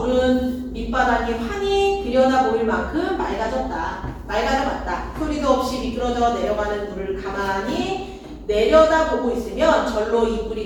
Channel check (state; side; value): identical; both; correlation 1.00